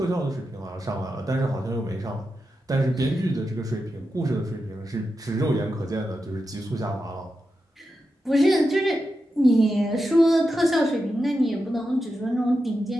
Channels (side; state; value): both; normal; correlation 0.89